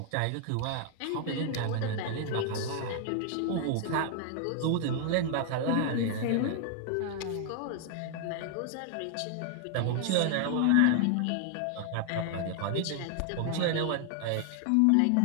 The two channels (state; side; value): different; both; correlation 0.00